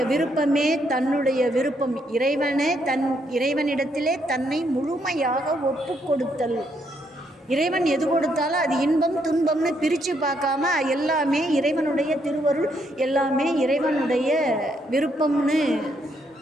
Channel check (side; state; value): both; normal; correlation 0.74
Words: விருப்பமே தன்னுடைய விருப்பம். இறைவனிடத்திலே தன்னை முழுமையாக ஒப்பு கொடுத்தல். இறைவன் எது கொடுத்தாலும் அது இன்பம் துன்பம்னு பிரித்து பார்க்காம எல்லாமே இறைவனுடைய திருவருள், எல்லாமே இறைவனுடைய விருப்பம்னு